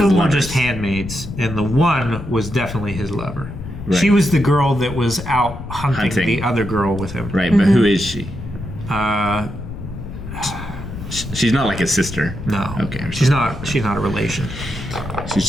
were lovers? just handmaids, and the one was definitely his lover. Right. She was the girl that was out hunting the other girl with him. Right, but who is she? Uh, She's not like his sister. No. Okay. She's not a relation. She's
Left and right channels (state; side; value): noise; left; rumble, 10 dB below the sound